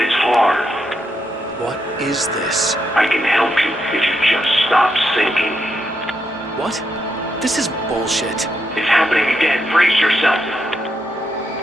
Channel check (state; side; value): normal; both; correlation 0.80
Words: it's hard. What is this? I can help you if you just stop sinking. What? This is bullshit. It's happening again. Brace yourself.